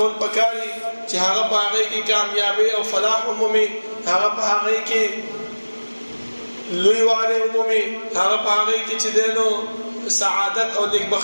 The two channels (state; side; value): inverted; both; correlation -1.00